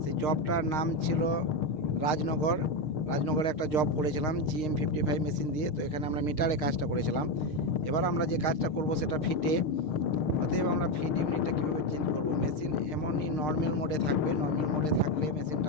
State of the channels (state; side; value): late; right; 6.5 ms